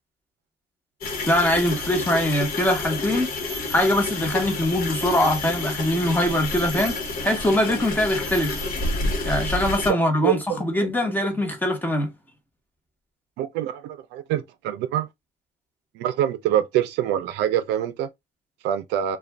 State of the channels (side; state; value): both; normal; correlation 0.52